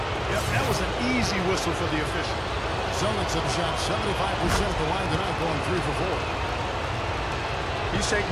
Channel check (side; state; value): both; identical; correlation 1.00